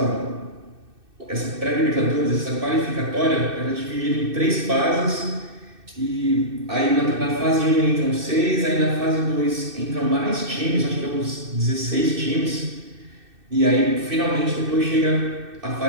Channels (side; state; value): left; late; 2.6 ms